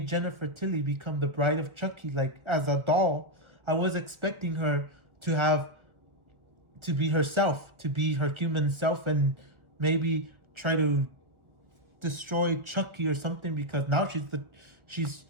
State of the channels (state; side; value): late; left; 1.4 ms